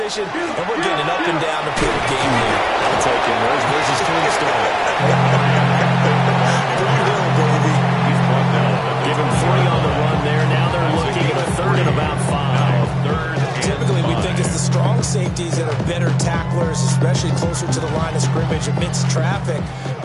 and we're getting up and down the field game here. I'll take him. Where's his clean start? Give him 3 on the run there. Now they're looking at a third and about 5. Typically, we think it's the strong safeties that are better tacklers players, especially closer to the line of scrimmage amidst traffic.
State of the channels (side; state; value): both; identical; correlation 1.00